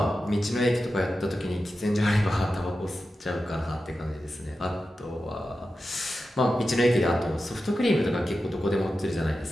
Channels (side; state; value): both; normal; correlation 0.92